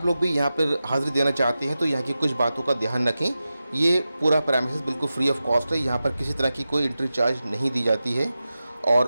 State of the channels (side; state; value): both; inverted; correlation -0.93